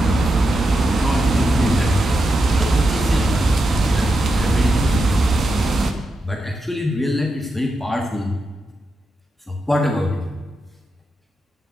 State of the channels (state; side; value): normal; both; correlation 0.87